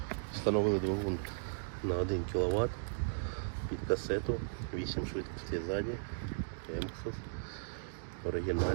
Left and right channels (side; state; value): left; silent; digital silence